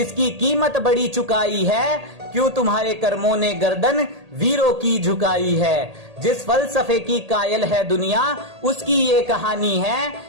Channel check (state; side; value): late; left; 1.8 ms